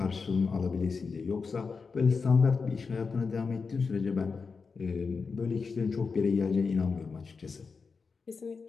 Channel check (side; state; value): right; quieter; 4.9 dB